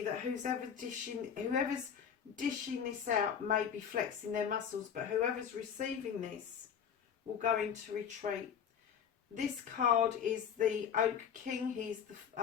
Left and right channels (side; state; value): right; quieter; 7.9 dB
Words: that whoever's dishing this out may be flexing their muscles, but whoever's receiving this will go into retreat. This card is the Oak King. He's the